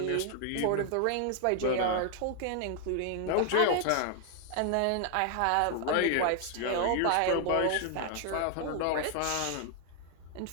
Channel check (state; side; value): different; both; correlation 0.00